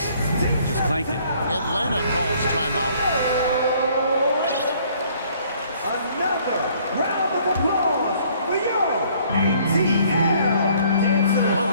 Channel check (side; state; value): both; inverted; correlation -0.60